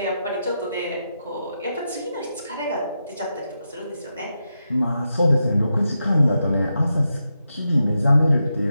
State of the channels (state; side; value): inverted; both; correlation -0.87